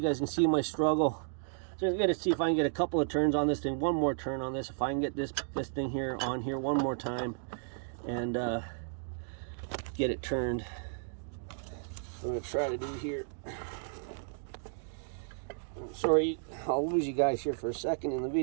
guys can see my struggle. So I'm gonna see if I can get a couple of turns on this thing. One more turn on this. If I can get this thing here on here one more time and get it turned. I'm gonna try to do here. I'm sorry, I'll lose you guys here for a second in the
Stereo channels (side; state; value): left; silent; digital silence